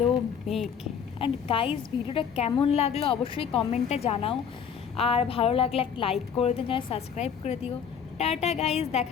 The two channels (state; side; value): quieter; right; 7.4 dB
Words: মেঘ। অ্যান্ড গাইজ ভিডিওটা কেমন লাগলো অবশ্যই কমেন্টে জানাও, আর ভালো লাগলে একটা লাইক করে দিও, চ্যানেল সাবস্ক্রাইব করে দিও। টাটা গাইজ,